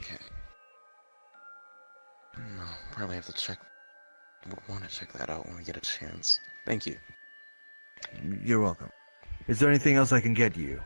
No, probably have to check. Would want to check that out when we get a chance. Thank you. You're welcome. Is there anything else I can get you?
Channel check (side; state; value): both; inverted; correlation -1.00